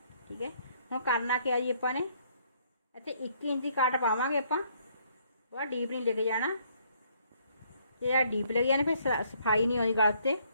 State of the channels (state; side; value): inverted; both; correlation -0.66